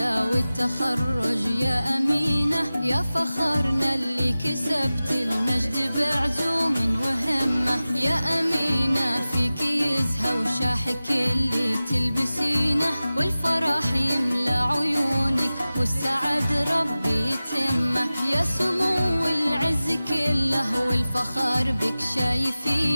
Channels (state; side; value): inverted; both; correlation -0.97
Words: والتخرج يا أمينة، يا فخرنا اللي كسبت المجد بعزوم وهمة. يا أمينة فيك يزهى وشاحك اللي تلبسينه، والفرح يملى عيونك والسعد ربي يتمه. يا سمو العز كله والفخر بك